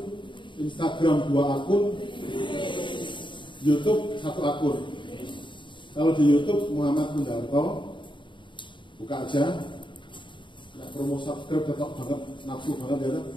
Instagram 2 akun, YouTube 1 akun. Kalau di YouTube Muhammad Kundarto, buka aja. Nggak promo subscribe tetap banget, nafsu banget ya.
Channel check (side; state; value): right; late; 0.23 ms